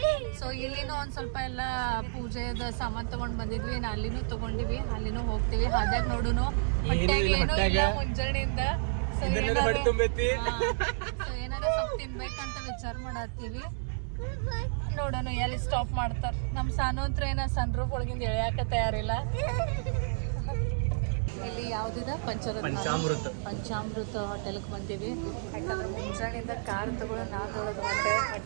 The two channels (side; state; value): left; silent; 57 dB below the other